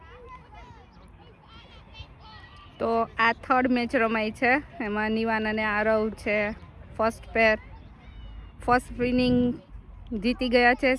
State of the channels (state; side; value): identical; both; correlation 1.00